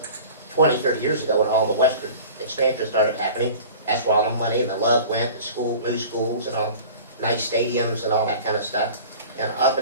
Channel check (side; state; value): both; inverted; correlation -0.41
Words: 20, 30 years ago when all the western expansion started happening. That's where all the money and the love went, to new schools and all, nice stadiums and all that kind of stuff. And up